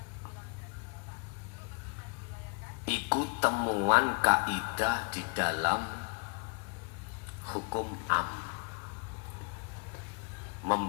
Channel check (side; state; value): right; quieter; 35.1 dB